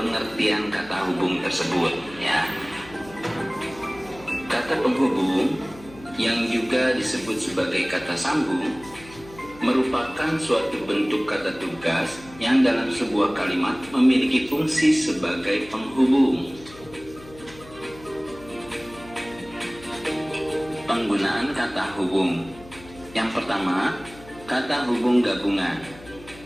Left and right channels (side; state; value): left; noise; hum, 20 dB below the sound